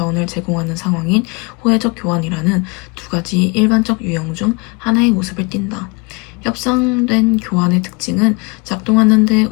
제공하는 상황인 호혜적 교환이라는 두 가지 일반적 유형 중 하나의 모습을 띈다. 협상된 교환의 특징은 작동하는 데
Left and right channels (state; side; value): quieter; right; 29.5 dB